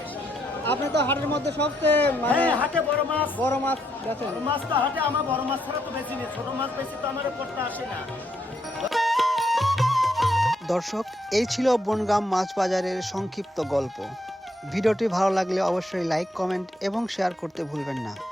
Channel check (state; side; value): normal; both; correlation 0.76